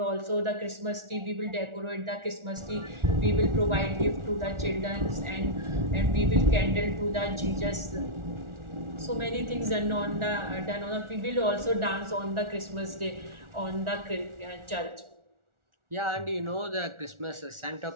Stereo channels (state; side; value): late; left; 1.4 ms